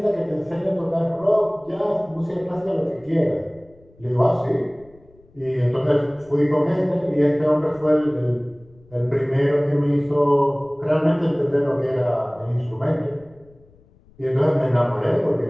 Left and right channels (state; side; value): noise; left; rumble, 28 dB below the sound